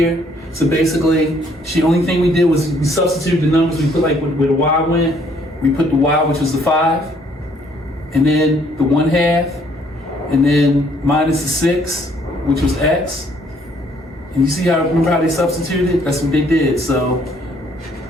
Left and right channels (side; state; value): both; normal; correlation 0.64